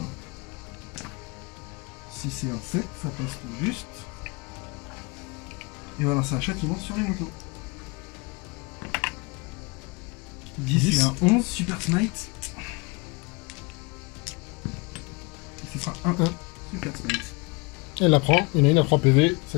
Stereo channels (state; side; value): quieter; right; 27.8 dB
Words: Si c'est un 7, ça passe tout juste. Il va lancer un châtiment sur les motos. 10 et un 11, super smite. Et ce sera un super smite. Elle la prend, il y en a une à 3 PV,